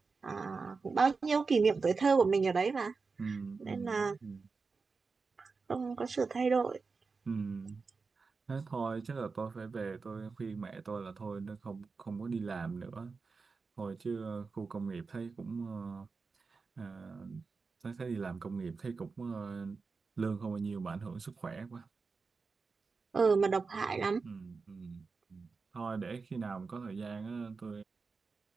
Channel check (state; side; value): quieter; left; 4.6 dB